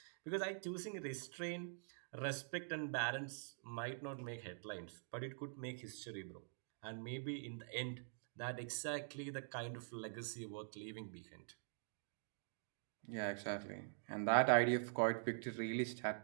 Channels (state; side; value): silent; left; digital silence